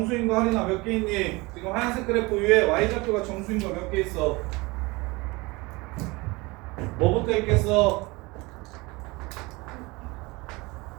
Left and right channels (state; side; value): quieter; left; 24.1 dB